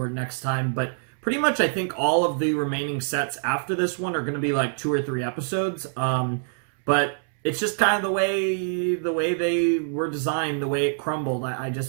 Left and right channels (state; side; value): silent; left; 62 dB below the other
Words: next time. But pretty much, I think all of the remaining sets after this one are going to be like 2 or 3 episodes. But it's just kind of the way they were designed, the way it crumbled. I